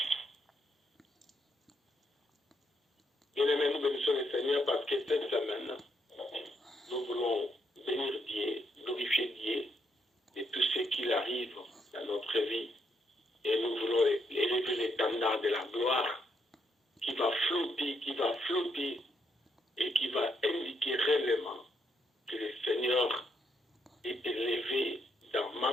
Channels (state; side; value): normal; both; correlation 0.76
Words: Bien-aimés, nous bénissons le Seigneur parce que cette semaine, nous voulons bénir Dieu, glorifier Dieu de tout ce qui arrive dans notre vie. Et nous voulons élever l'étendard de la gloire qui va flotter et qui va indiquer réellement que le Seigneur est élevé dans ma